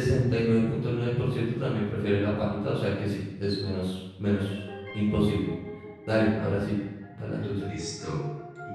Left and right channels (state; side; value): identical; both; correlation 1.00